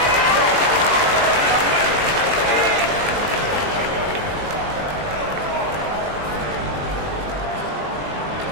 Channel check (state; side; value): late; left; 20 ms